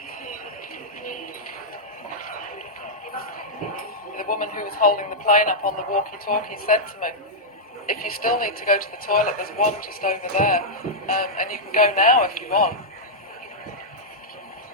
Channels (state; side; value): normal; both; correlation -0.07